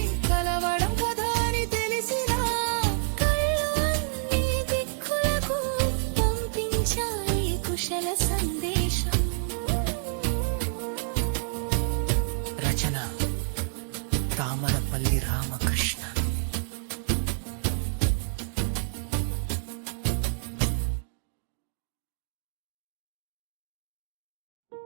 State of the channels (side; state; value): left; silent; digital silence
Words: కలవడం కదా అని తెలిసిన కళ్ళు అన్ని దిక్కులకు పంపించాయి కుశల సందేశం. రచన తామరపల్లి రామకృష్ణ.